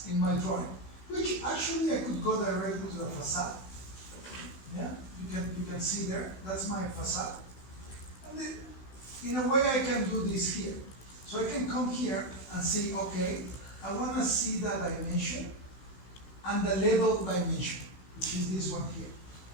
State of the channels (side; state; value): right; late; 16 ms